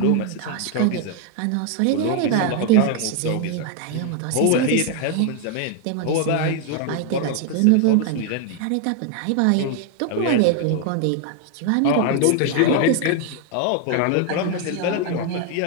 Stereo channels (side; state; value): both; different; correlation 0.01